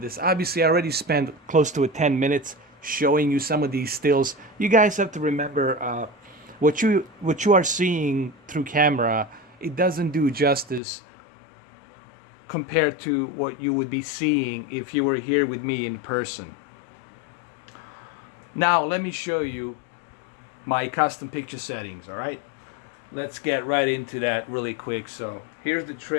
this. Obviously, I already spent close to 10 minutes showing you some of these stills. You guys have to remember what you are seeing through camera, it doesn't do justice compared to what you would be seeing if you were here with me in person. Now, let me show you my custom picture settings, all right? Let's get right into that really quick. So, here's the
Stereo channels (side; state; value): right; drops out; at 10.8 s